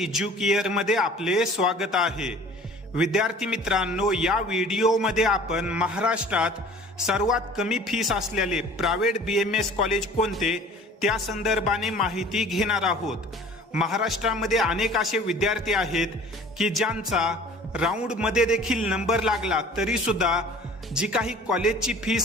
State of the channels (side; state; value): both; normal; correlation 0.47